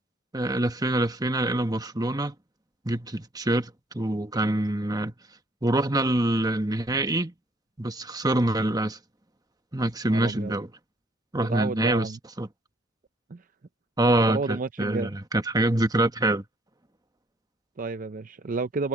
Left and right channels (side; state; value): both; normal; correlation 0.64